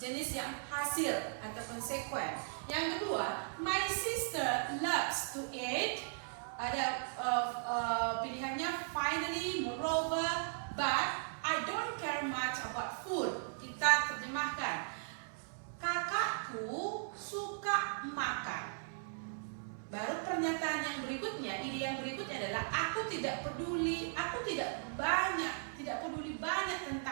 jenis yang hasil atau konsekuen. Yang kedua, my sister loves to eat. Ada pilihannya finally, moreover, but I don't care much about food. Kita terjemahkan, kakakku suka makan. Baru pernyataan yang berikutnya, ide yang berikutnya adalah aku tidak peduli banyak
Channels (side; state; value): left; silent; digital silence